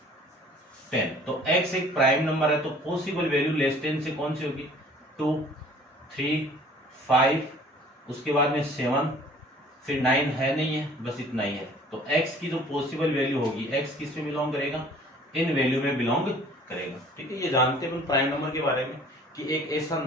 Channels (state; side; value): normal; both; correlation 0.51